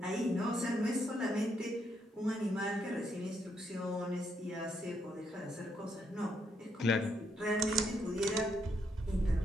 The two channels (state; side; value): normal; both; correlation 0.76